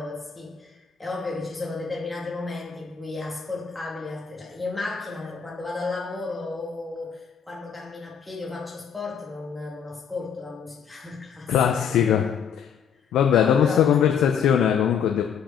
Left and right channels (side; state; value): right; quieter; 7.4 dB